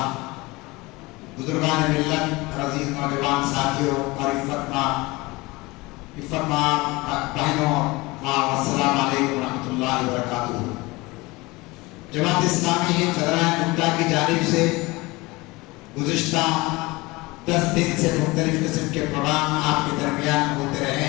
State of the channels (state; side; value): quieter; right; 22.8 dB